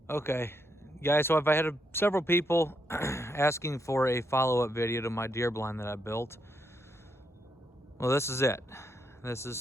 Okay, guys, so I've had several people asking for a follow-up video to my deer blind that I built. Well, this is it. This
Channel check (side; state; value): both; normal; correlation 0.79